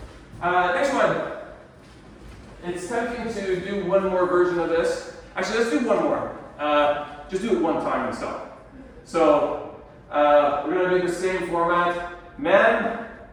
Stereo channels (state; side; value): identical; both; correlation 1.00